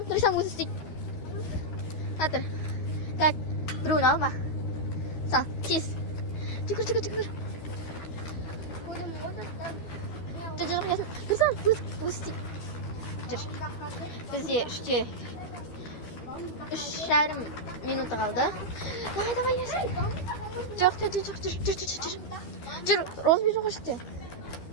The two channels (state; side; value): late; right; 12 ms